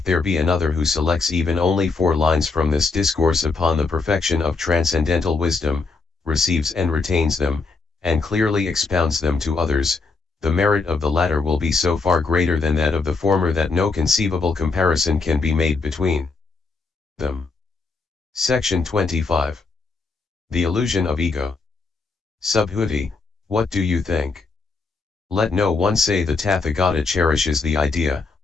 there be another who selects even only 4 lines from this discourse upon the perfection of transcendental wisdom, receives and retains them, and clearly expounds them to others, the merit of the latter will be so far greater than that of the former that no conceivable comparison can be made between them. Section 25. The illusion of ego. Subhuti, what do you think? Let no one say the Tathagata cherishes the idea,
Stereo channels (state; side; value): quieter; right; 4.1 dB